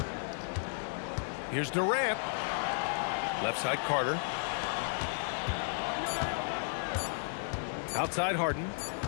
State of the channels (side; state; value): right; silent; digital silence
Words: Here's Durant. Left side Carter. Outside Harden.